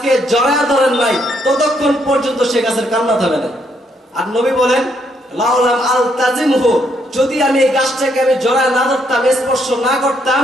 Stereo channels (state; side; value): normal; both; correlation 0.73